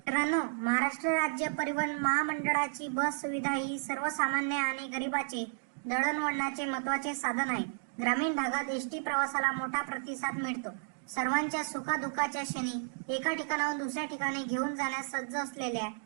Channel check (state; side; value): silent; left; digital silence